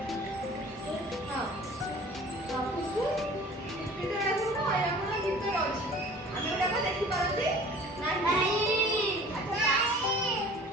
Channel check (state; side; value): normal; both; correlation 0.47